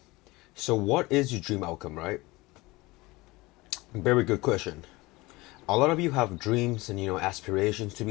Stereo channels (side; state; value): right; quieter; 21.7 dB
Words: So, what is your dream outcome, right? Very good question. A lot of you have dreams and aspirations to